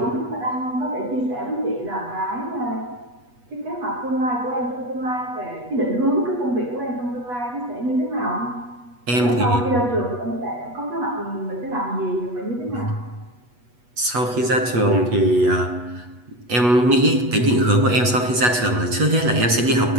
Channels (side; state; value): left; late; 8.2 ms